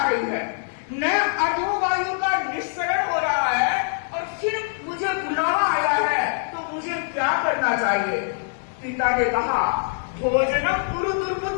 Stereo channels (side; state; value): right; silent; digital silence